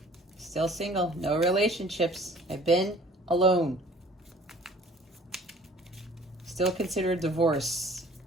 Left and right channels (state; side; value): normal; both; correlation 0.52